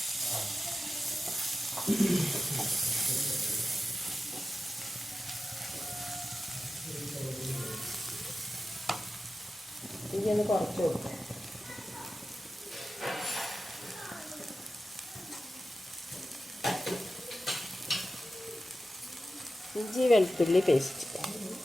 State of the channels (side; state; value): both; normal; correlation 0.92